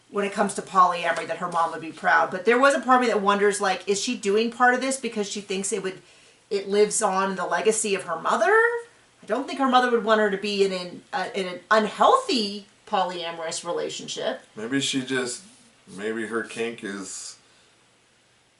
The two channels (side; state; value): both; identical; correlation 1.00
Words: when it comes to polyamory, that her mom would be proud. But there was a part of me that wonders, like, is she doing part of this because she thinks it lives on in the legacy of her mother? I don't think her mother would want her to be in an unhealthy polyamorous relationship. Maybe her kink is